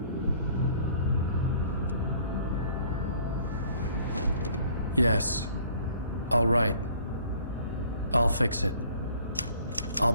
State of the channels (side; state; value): both; inverted; correlation -0.56